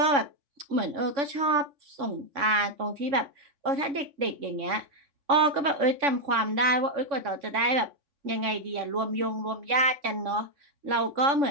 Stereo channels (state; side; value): late; left; 3.5 ms